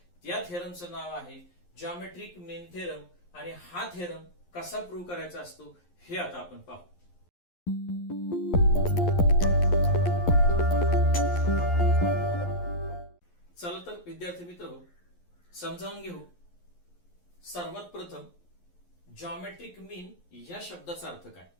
त्या थेरमचं नाव आहे जॉमेट्रिक मीन थेरम. आणि हा थेरम कसा प्रूव्ह करायचा असतो हे आता आपण पाहू. चला तर विद्यार्थी मित्र समजावून घेऊ. सर्वात प्रथम जॉमेट्रिक मीन या शब्दाचा अर्थ काय.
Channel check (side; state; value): right; late; 11 ms